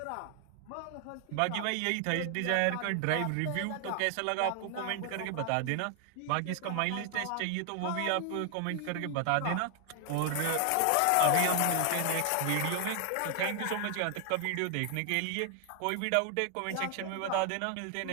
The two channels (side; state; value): both; different; correlation 0.00